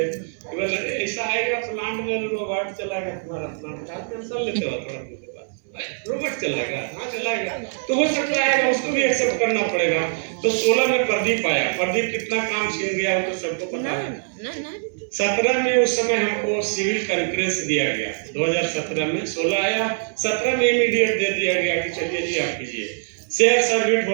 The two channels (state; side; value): silent; left; 63 dB below the other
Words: ऐसा आएगा प्लांट में रोबोट चलाएगा, तुम्हारा प्लांट का टेंशन लेते हो थोड़ा, रोबोट चलाएगा, हाँ चलाएगा, तो हो सकता है उसको भी एक्सेप्ट करना पड़ेगा। तो 16 में प्रदीप आया, प्रदीप कितना काम छीन गया वो तो सबको पता है। 17 में उस समय हमको सिविल कंकरेंस दिया गया, 2017 में 16 आया, 17 में इमीडिएट दे दिया गया कि चलिए जी आप कीजिए। शेयर सर्विट